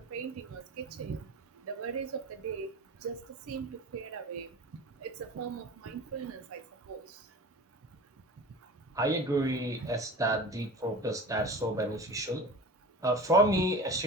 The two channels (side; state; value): both; normal; correlation 0.35